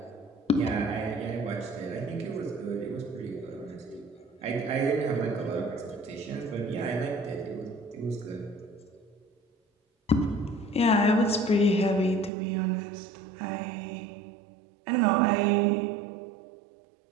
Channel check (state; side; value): drops out; left; at 12.3 s